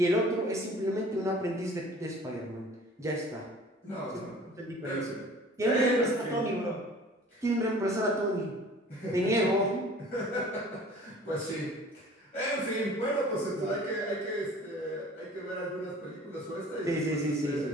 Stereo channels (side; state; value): both; normal; correlation 0.47